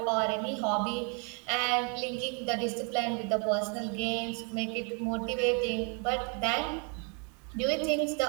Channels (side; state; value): left; quieter; 37.5 dB